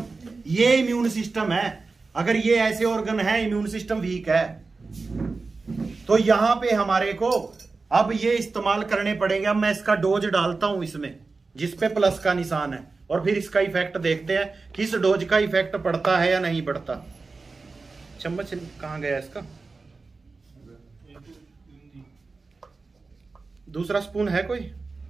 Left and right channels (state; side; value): quieter; left; 4.0 dB